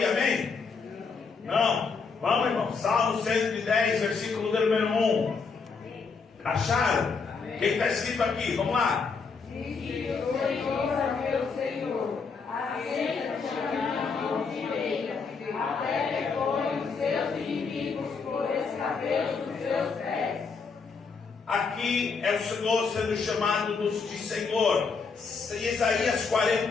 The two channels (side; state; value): right; quieter; 5.0 dB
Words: amém? Não? Vamos, irmão. Salmo 110, versículo número 1. Acharam? O que está escrito aqui? Vamos lá. Disse o Senhor a meu Senhor: assenta-te à minha mão direita, até que põe os seus inimigos por escabelo dos seus pés. Aqui é o Senhor sendo chamado de Senhor. Isaías